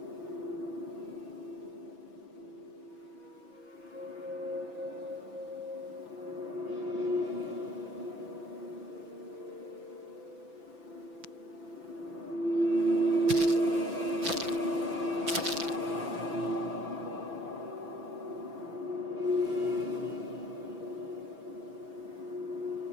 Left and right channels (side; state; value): left; late; 6.0 ms